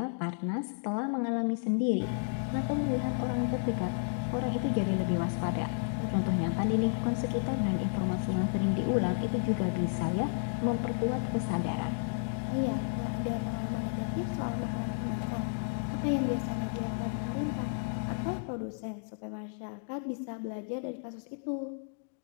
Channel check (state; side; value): silent; right; digital silence